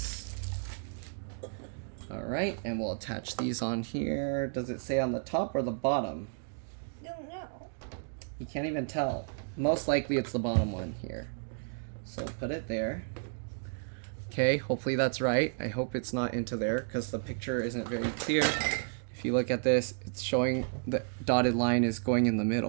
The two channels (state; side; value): silent; left; digital silence